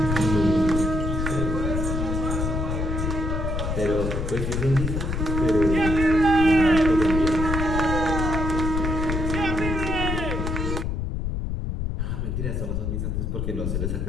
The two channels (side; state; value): left; noise; rumble, 1 dB below the sound